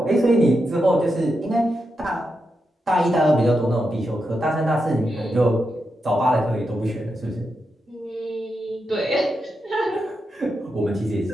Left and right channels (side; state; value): both; normal; correlation 0.86